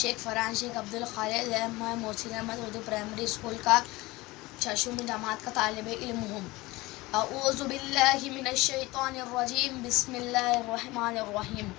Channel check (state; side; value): quieter; right; 20.9 dB